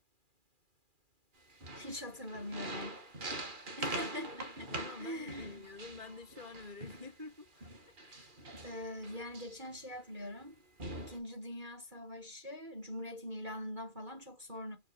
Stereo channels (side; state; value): left; late; 2.4 ms